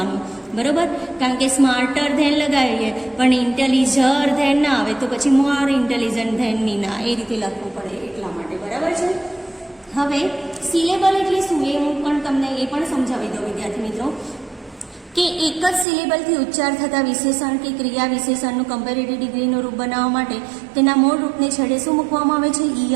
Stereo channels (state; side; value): drops out; left; at 15.9 s